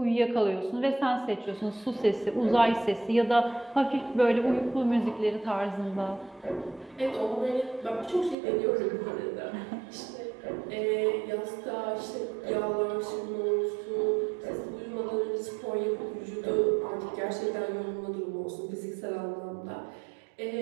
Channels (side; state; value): left; drops out; at 8.3 s